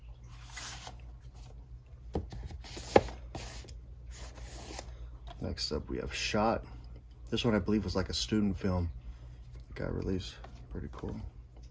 Next up, we have Shot. This one I believe was like a student film. It got released. Pretty cool.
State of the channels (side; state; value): both; identical; correlation 1.00